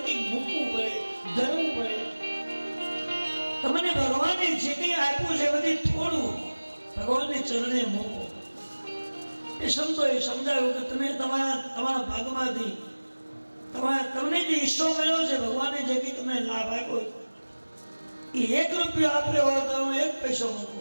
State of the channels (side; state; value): both; inverted; correlation -1.00